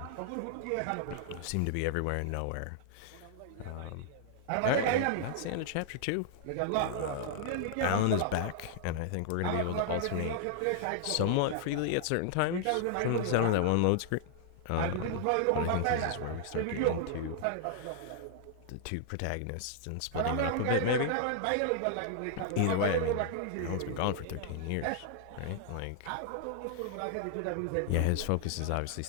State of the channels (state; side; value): different; both; correlation -0.01